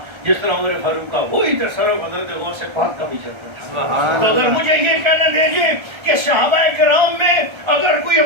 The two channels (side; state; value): left; late; 1.3 ms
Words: جس طرح عمر فاروق کا وہی تصرف حضرت غوث پاک کا بھی چلتا تھا. تو اگر مجھے یہ کہنا دیجیے کہ صحابہ کرام میں اگر کوئی